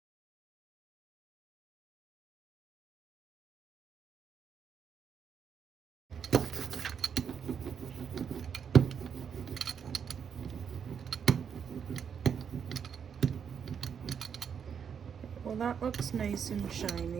Well, that looks nice and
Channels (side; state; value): left; quieter; 7.3 dB